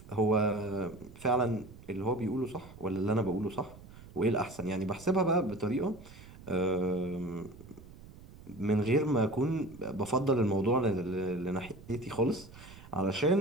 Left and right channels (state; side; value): noise; right; rumble, 19 dB below the sound